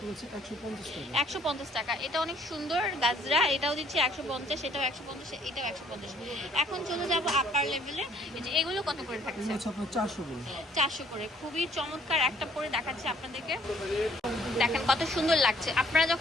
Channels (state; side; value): normal; both; correlation 0.62